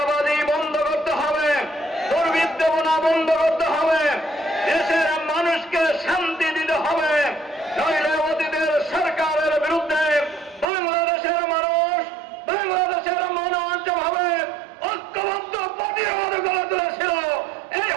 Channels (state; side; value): drops out; left; at 10.7 s